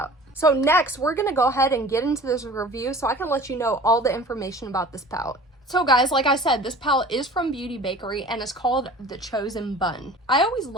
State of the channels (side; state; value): both; normal; correlation 0.43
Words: So next, we're going to go ahead and get into this review so I can let you know all the information about this palette. So guys, like I said, this palette is from Beauty Bakerie and it's called The Chosen Bun. I always